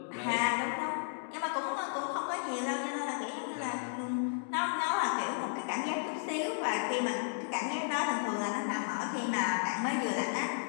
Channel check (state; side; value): silent; right; digital silence